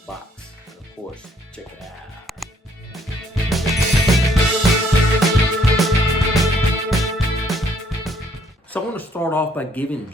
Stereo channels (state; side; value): normal; both; correlation 0.66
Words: And of course, check it out. So I want to start off by giving